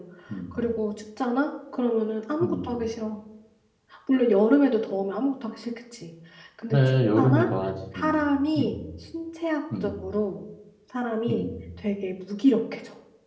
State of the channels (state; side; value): identical; both; correlation 1.00